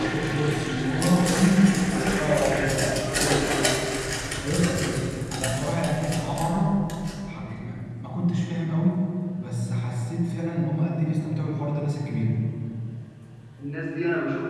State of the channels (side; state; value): both; identical; correlation 1.00